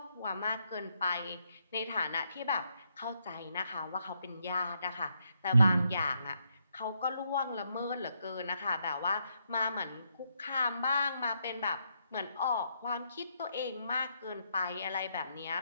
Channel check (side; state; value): both; inverted; correlation -0.78